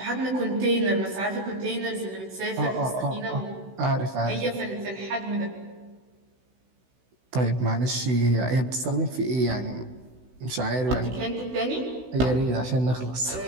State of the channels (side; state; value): left; late; 16 ms